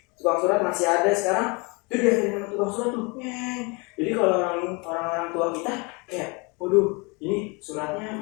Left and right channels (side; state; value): right; quieter; 29.4 dB